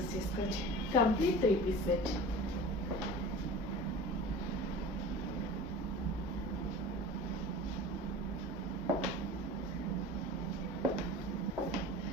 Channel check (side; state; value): both; normal; correlation 0.38